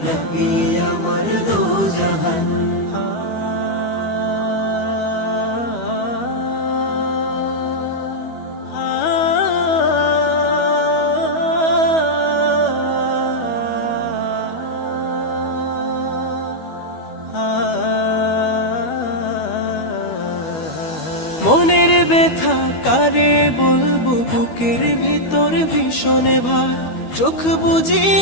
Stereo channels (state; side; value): late; right; 12 ms